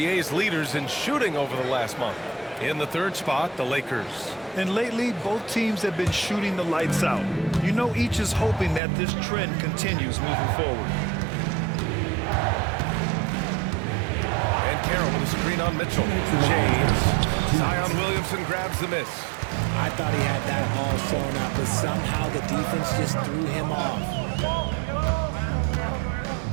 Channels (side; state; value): left; drops out; at 8.8 s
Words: leaders in shooting over the last month. In the 3rd spot, the Lakers. And lately, both teams have been shooting the lights out. You know, each is hoping that this trend continues moving forward. And Carroll with a screen on Mitchell. James. Zion Williamson grabs the miss. I thought he had that all sewn up, but somehow the defense just threw him off.